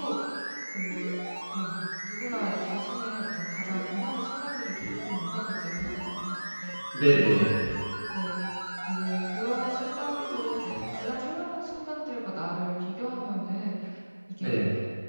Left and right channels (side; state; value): both; inverted; correlation -1.00